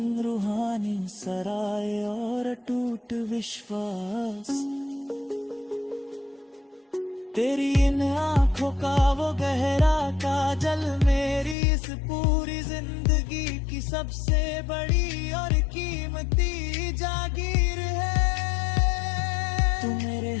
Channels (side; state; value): right; drops out; at 11.6 s